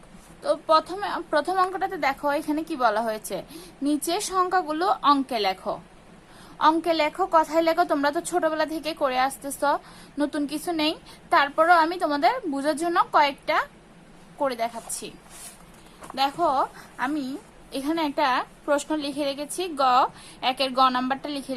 তো প্রথম অঙ্কটাতে দেখো এখানে কি বলা হয়েছে, নিচে সংখ্যাগুলো অঙ্কে লেখো। অঙ্কে লেখো, কথায় লেখো, তোমরা তো ছোটবেলা থেকে করে আসতেছ, নতুন কিছু নেই। তারপরও আমি তোমাদের বোঝার জন্য কয়েকটা করে দেখাচ্ছি। দেখো আমি এখানে একটা প্রশ্ন লিখে রেখেছি, একের গ নাম্বারটা লিখে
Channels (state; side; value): identical; both; correlation 1.00